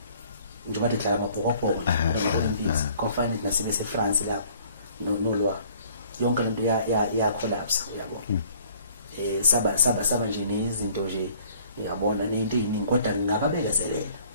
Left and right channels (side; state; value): both; inverted; correlation -0.56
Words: nje bathi dlala amabhokobhoko kufanele nasebese eFrance lapho no lwah yonke lento ya collapse yabo saba nje nezinto nje yabona nento eziningi kodwa ngingababekezelela